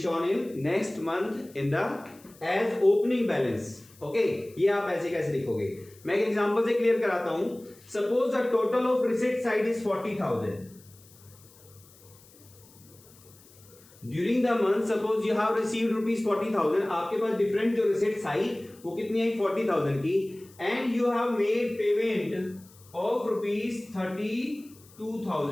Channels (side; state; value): left; noise; hiss, 25 dB below the sound